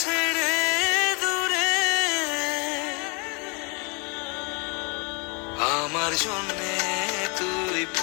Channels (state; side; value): quieter; right; 32.6 dB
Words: আমার জন্যে তুই